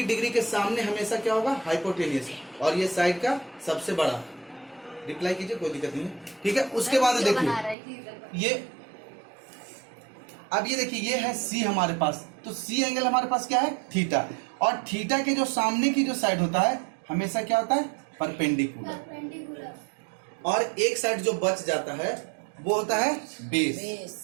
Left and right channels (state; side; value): drops out; left; at 7.8 s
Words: डिग्री के सामने हमेशा क्या होगा, हाइपोटेनियस, और ये साइड का सबसे बड़ा। रिप्लाई कीजिए, कोई दिक्कत नहीं है, ठीक है। उसके बाद देखिए ये, अब ये देखिए ये है सी हमारे पास, तो सी एंगल हमारे पास क्या है, थीटा। और थीटा के जो सामने की जो साइड होता है हमेशा क्या होता है, परपेंडिकुलर। और एक साइड जो बच जाता है वो होता है बेस।